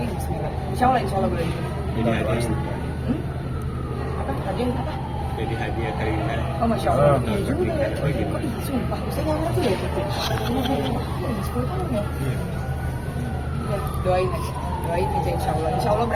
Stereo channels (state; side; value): identical; both; correlation 1.00